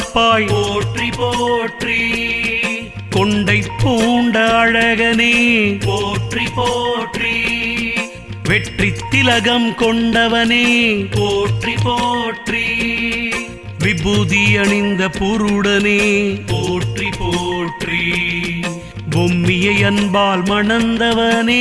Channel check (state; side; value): identical; both; correlation 1.00